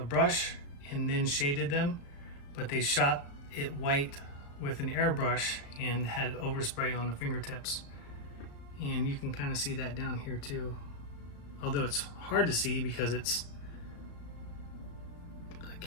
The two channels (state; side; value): late; right; 35 ms